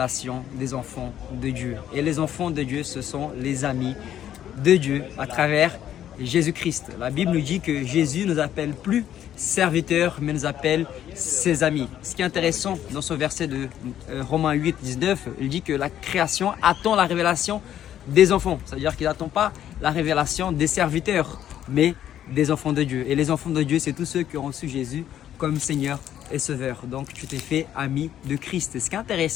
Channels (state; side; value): quieter; right; 10.9 dB